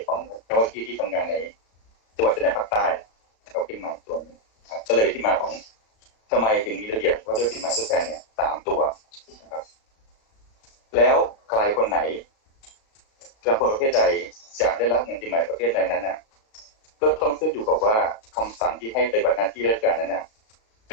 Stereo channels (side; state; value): right; late; 36 ms